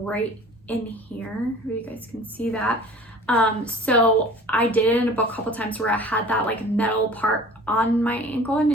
in here. You guys can see that. So I did end up a couple times where I had that like metal part on my ankle and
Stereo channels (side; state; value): both; normal; correlation 0.45